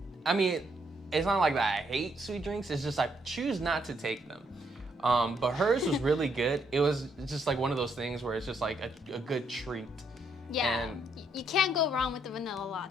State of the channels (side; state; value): both; normal; correlation 0.73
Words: I mean, it's not like that I hate sweet drinks, it's just I choose not to take them. But hers was really good. It was just like one of those things where it's just like a good treat. Yeah, And you can't go wrong with the vanilla